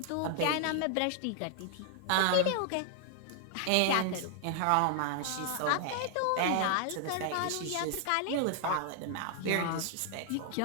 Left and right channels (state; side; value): different; both; correlation 0.00